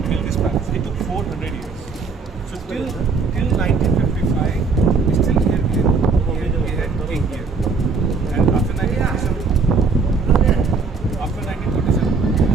built this palace. It took 400 years. So till 1955, still here we had king here. And after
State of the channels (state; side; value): quieter; left; 4.6 dB